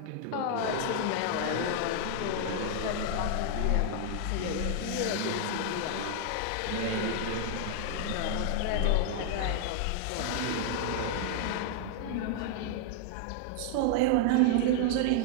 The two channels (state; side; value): different; both; correlation 0.00